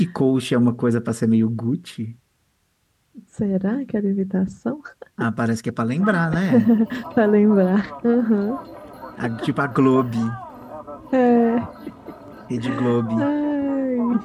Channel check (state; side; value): identical; both; correlation 1.00